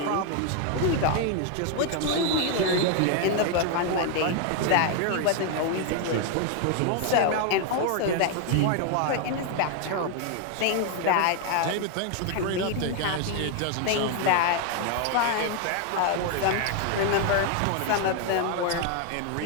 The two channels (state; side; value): different; both; correlation 0.01